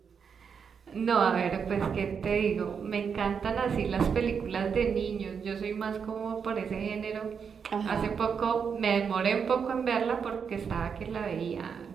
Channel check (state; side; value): quieter; left; 6.5 dB